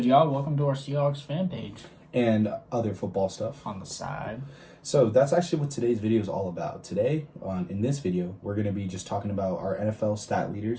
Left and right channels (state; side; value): identical; both; correlation 1.00